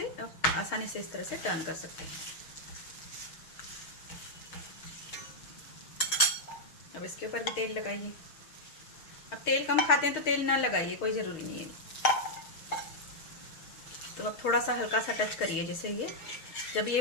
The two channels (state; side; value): late; right; 6.5 ms